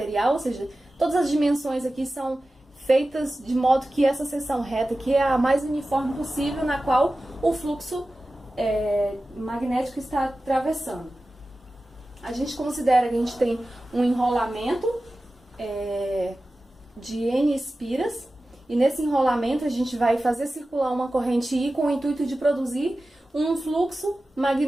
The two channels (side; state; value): both; normal; correlation 0.95